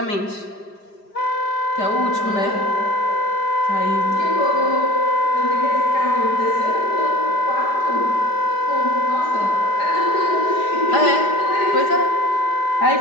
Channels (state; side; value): late; right; 4.9 ms